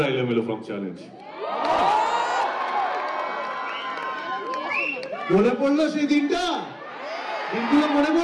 এলোমেলো ফ্রম চ্যালেঞ্জ। মনে পড়লো সেই দিনগুলো মনে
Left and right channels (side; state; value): both; identical; correlation 1.00